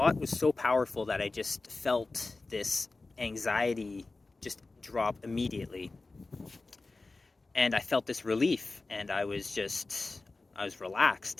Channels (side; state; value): right; quieter; 3.5 dB